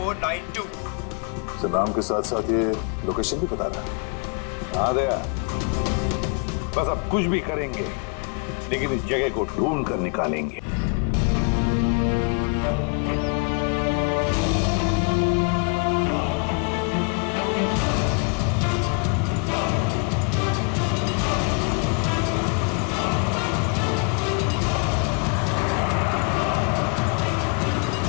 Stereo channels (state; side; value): quieter; right; 34.9 dB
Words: Sir, नाम के साथ साथ ये लोकेशन भी बता रहा है। हाँ दया, बस अब कुछ भी करेंगे लेकिन इस जगह को ढूंढ कर निकालेंगे।